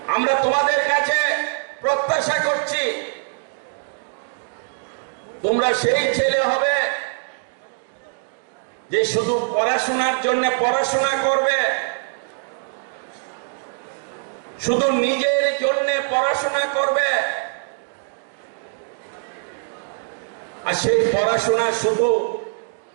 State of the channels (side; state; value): left; silent; digital silence